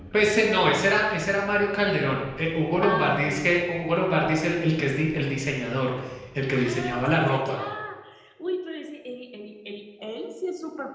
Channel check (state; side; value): identical; both; correlation 1.00